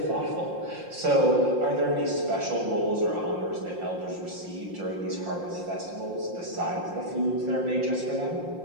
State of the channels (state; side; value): late; left; 5.7 ms